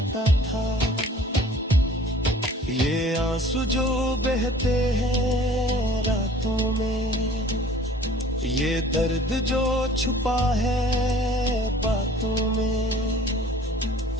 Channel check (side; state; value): both; normal; correlation 0.50